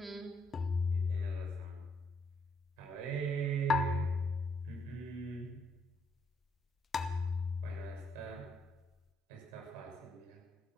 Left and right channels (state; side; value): normal; both; correlation 0.74